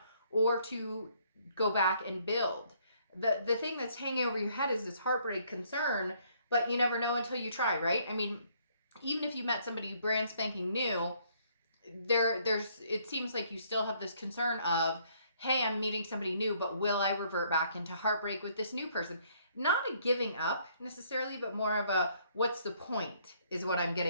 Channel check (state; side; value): inverted; both; correlation -0.66